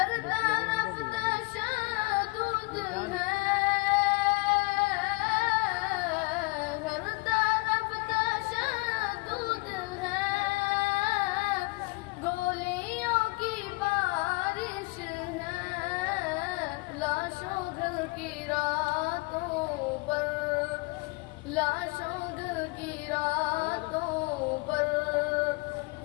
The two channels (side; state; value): right; quieter; 25.3 dB